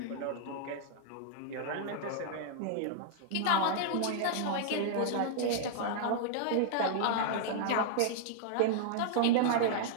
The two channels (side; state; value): both; different; correlation -0.01